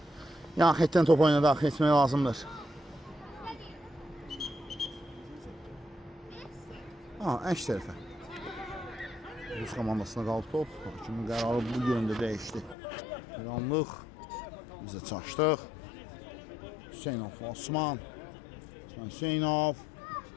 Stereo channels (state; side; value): drops out; right; at 12.8 s